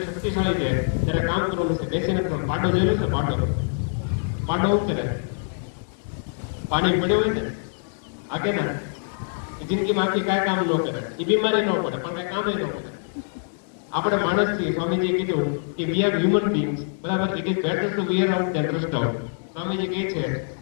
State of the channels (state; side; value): silent; right; digital silence